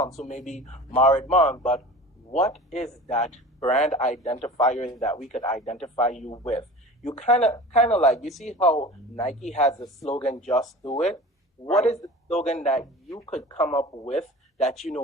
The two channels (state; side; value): normal; both; correlation 0.38